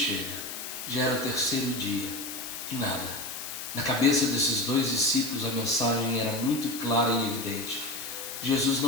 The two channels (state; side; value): noise; left; hiss, 7 dB below the sound